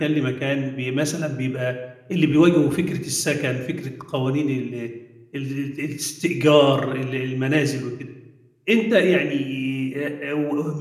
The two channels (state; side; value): identical; both; correlation 1.00